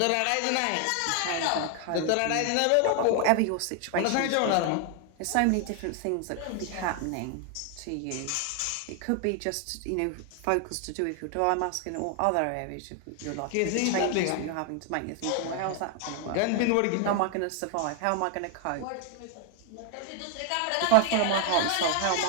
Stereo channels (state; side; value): different; both; correlation 0.01